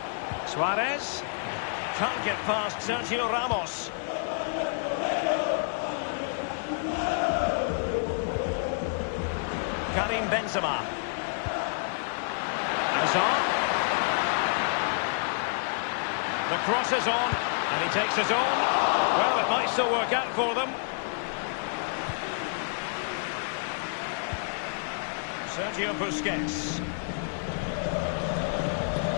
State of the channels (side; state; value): right; silent; 59 dB below the other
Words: Suarez, can't get past Sergio Ramos. Karim Benzema. Hazard. The cross is on, and he takes his own. Well, it might still work out for them. Sergio Busquets.